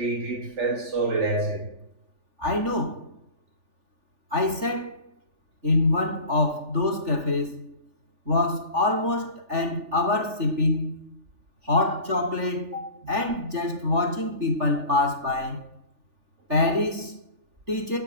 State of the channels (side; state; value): left; late; 3.4 ms